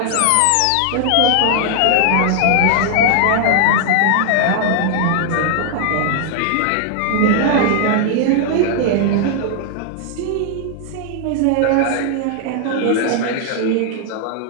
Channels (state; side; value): different; both; correlation 0.00